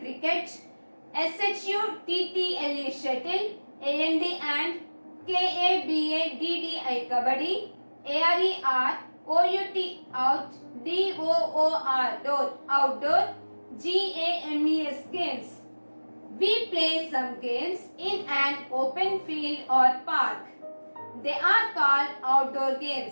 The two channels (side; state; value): both; inverted; correlation -1.00